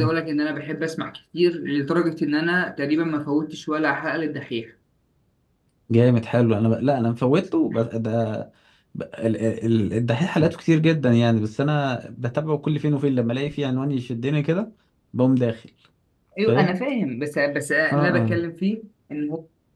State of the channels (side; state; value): both; identical; correlation 1.00